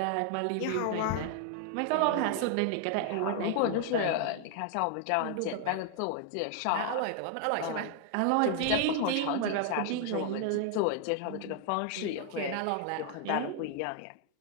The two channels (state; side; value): different; both; correlation 0.00